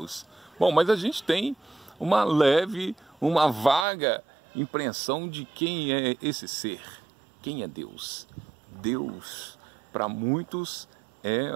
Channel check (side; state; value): left; drops out; at 3.9 s